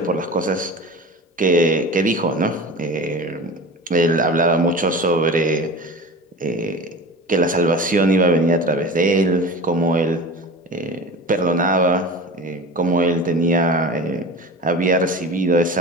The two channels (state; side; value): normal; both; correlation 0.34